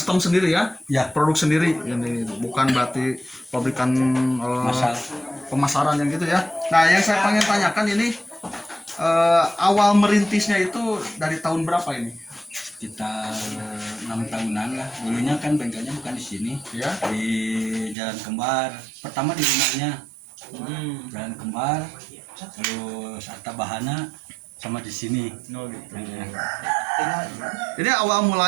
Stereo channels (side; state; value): left; drops out; at 17.9 s